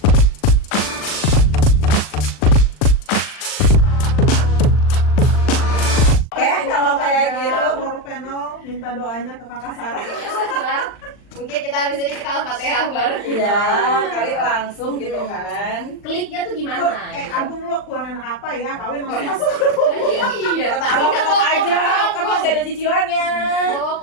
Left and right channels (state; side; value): late; right; 39 ms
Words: Kalau kayak gitu, World Panel minta doanya ke Kakak Sarah. Mungkin kita habis ini kita Al-Fatihah bareng. Iya, kali langsung gitu kan. Kliknya tuh gimana? Agung lo kurang enak apa ya? Kawin langsung masuk. Iya. Kata Agung tetap aja, kan masih ada cicilannya. Bawa